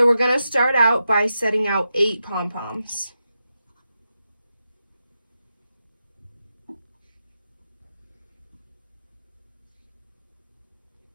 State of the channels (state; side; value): inverted; both; correlation -0.88